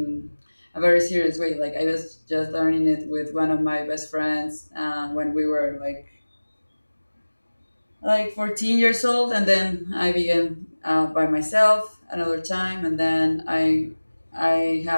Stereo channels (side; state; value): both; inverted; correlation -1.00